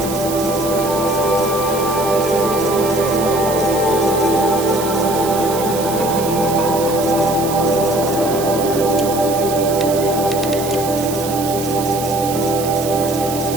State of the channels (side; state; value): right; noise; hiss, 9 dB below the sound